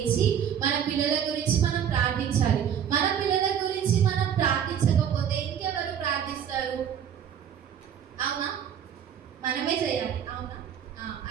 మన పిల్లల గురించి మనం ప్రార్థించాలి. మన పిల్లల గురించి మనం ప్రార్థించకపోతే ఇంకెవరు ప్రార్థిస్తారు? అవునా? మనమే చేయాలి. అవునా?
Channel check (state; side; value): quieter; left; 8.9 dB